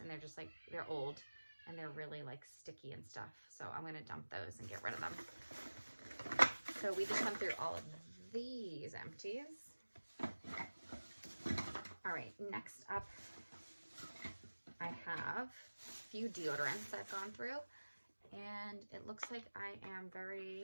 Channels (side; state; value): both; inverted; correlation -1.00